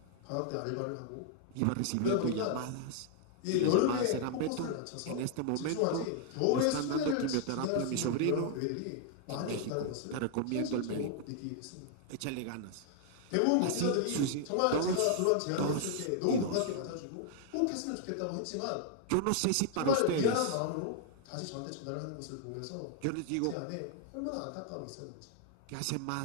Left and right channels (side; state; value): both; different; correlation 0.00